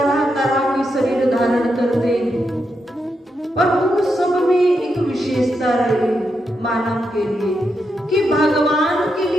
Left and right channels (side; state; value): both; normal; correlation 0.84